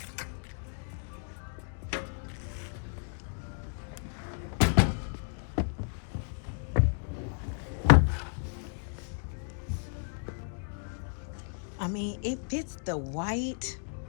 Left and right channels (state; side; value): silent; right; 56 dB below the other